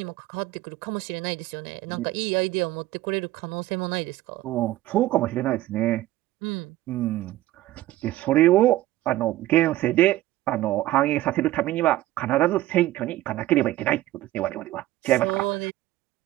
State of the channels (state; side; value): quieter; left; 16.0 dB